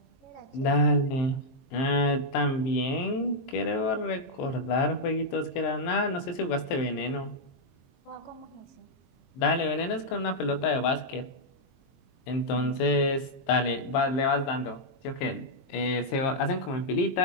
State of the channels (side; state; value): right; late; 22 ms